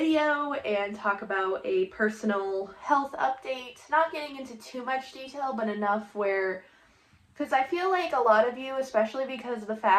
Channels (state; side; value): identical; both; correlation 1.00